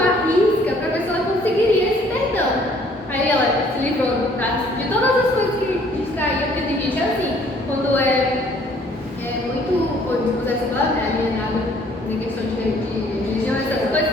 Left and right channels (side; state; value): both; normal; correlation 0.60